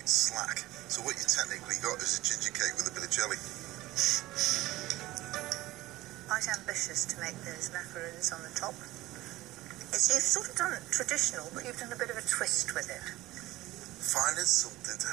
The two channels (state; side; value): quieter; left; 17.6 dB